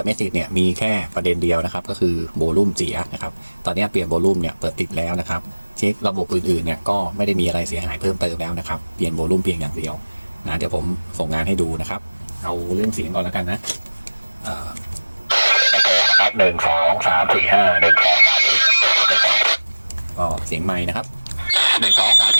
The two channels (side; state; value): both; inverted; correlation -1.00